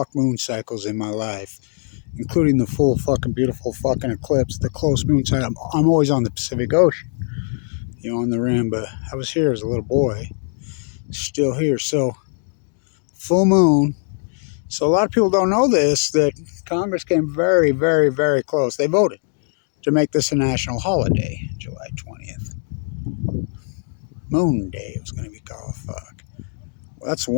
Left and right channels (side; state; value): right; silent; 56 dB below the other